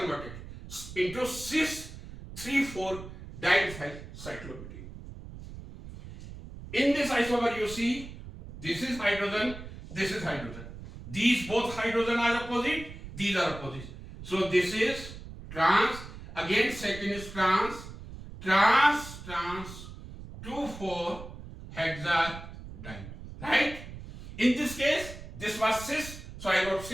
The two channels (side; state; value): right; noise; rumble, 13 dB below the sound